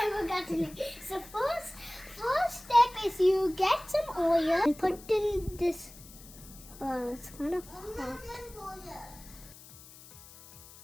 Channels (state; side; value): noise; left; hiss, 19 dB below the sound